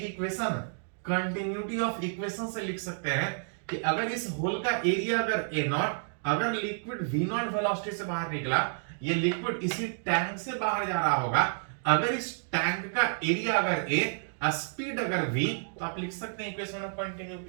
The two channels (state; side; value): silent; left; digital silence